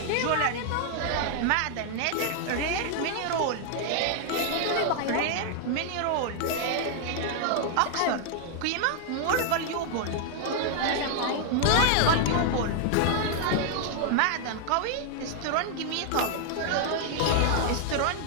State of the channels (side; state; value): both; different; correlation 0.00